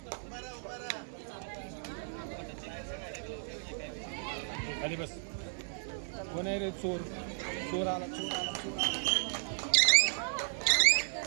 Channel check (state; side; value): silent; left; digital silence